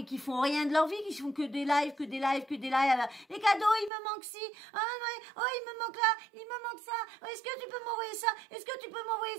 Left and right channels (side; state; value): left; drops out; at 3.9 s